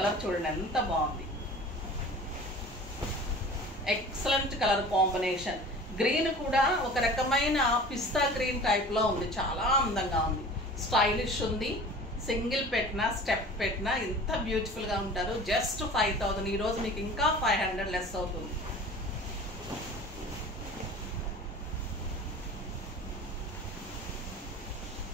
చూడండి ఎంత బాగుంది, ఎక్సలెంట్ కలర్ కాంబినేషన్. గ్రీన్ కూడా ఒక రకమైన పిస్తా గ్రీన్ టైప్లో ఉంది, చాలా అందంగా ఉంది, స్టైలిష్ ఉంది. సింగిల్ పెట్టినా స్టెప్ పెట్టినా ఎంత బ్యూటిఫుల్గా ఉంటారు. జస్ట్ 5000. ఈరోజు మీకు ఇంకా 500 లెస్ అవుతుంది.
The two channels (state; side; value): normal; both; correlation 0.41